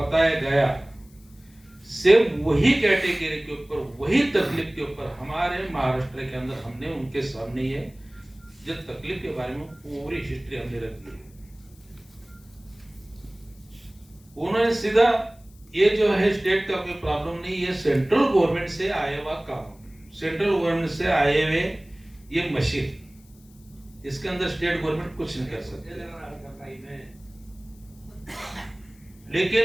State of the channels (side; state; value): left; noise; hiss, 29 dB below the sound